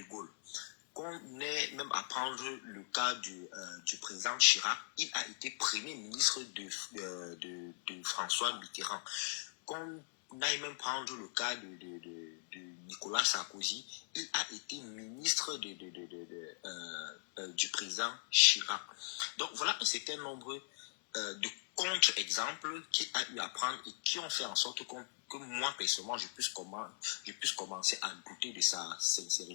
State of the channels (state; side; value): silent; right; digital silence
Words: Gaulle. Qu'on ait même à prendre le cas du président Chirac, il a été premier ministre de François Mitterrand. Qu'on aille même prendre le cas de Nicolas Sarkozy, il a été ministre du président Chirac. Donc voilà un certain nombre de contre-exemples qu'il a eu à prendre et qui ont fait en sorte que moi personnellement je puisse commencer à douter de sa